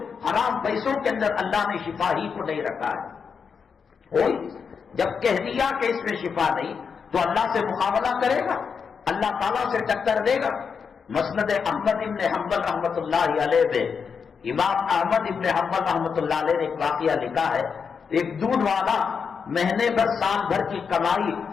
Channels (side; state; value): right; quieter; 6.1 dB